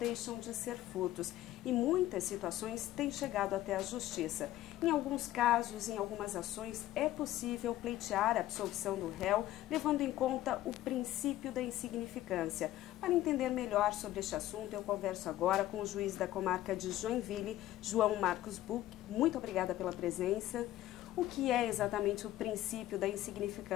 de ser furtos. E muitas situações têm chegado até a justiça. Em alguns casos, em algumas ações, é possível pleitear a absolvição do réu, levando em conta o princípio da insignificância. Para entender melhor sobre este assunto, eu converso agora com o juiz da comarca de Joinville, João Marcos Buch. Muito obrigada pela presença. O que é exatamente o princípio da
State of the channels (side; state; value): right; quieter; 14.6 dB